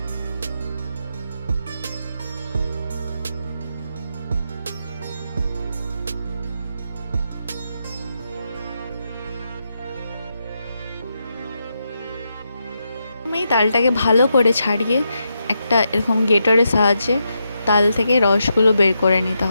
আমি তালটাকে ভালো করে ছাড়িয়ে একটা এরকম গ্রেটারের সাহায্যে তাল থেকে রসগুলো বের করে নিতে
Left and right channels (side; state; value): both; inverted; correlation -0.84